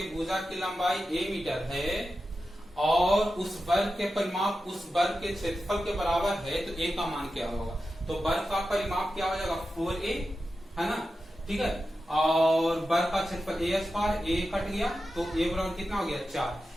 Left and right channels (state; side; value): normal; both; correlation 0.91